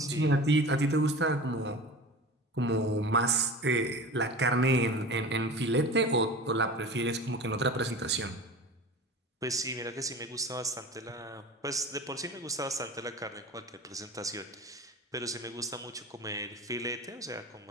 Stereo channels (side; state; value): both; normal; correlation 0.35